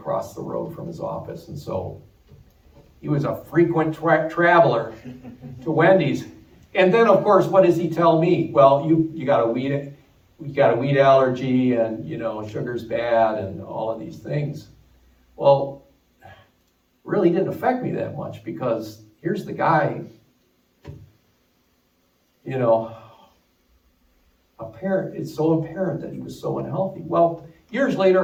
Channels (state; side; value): identical; both; correlation 1.00